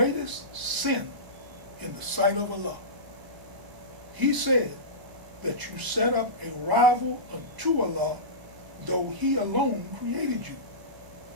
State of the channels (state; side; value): late; left; 1.0 ms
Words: sin in the sight of Allah?" He said, "That you set up a rival unto Allah, though He alone created you."